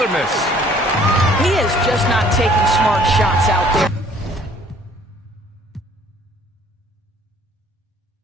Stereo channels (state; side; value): normal; both; correlation 0.57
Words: miss. He is just not taking smart shots out there.